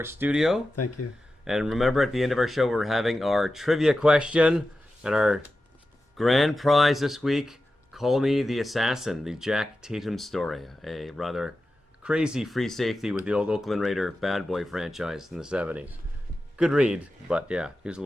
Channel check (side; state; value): both; normal; correlation 0.92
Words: studio. Thank you. And remember, at the end of our show, we're having our trivia question. And our grand prize this week, Call Me the Assassin, the Jack Tatum story. A rather crazy free safety with the old Oakland Raider bad boy franchise in the 70s. Good read, but yeah, he was a